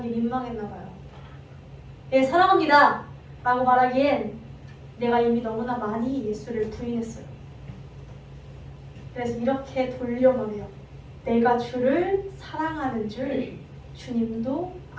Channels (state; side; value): identical; both; correlation 1.00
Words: 민망했나 봐요. 예, 사랑합니다 라고 말하기엔 내가 이미 너무나 많이 예수를 부인했어요. 그래서 이렇게 돌려 말해요. 내가 주를 사랑하는 줄 주님도